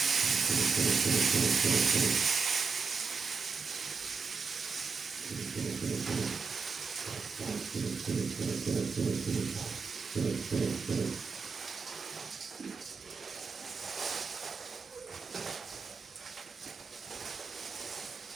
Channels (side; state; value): left; quieter; 5.0 dB